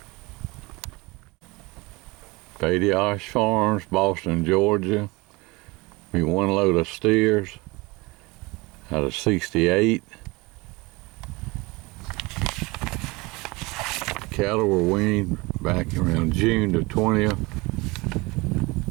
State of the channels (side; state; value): left; quieter; 24.1 dB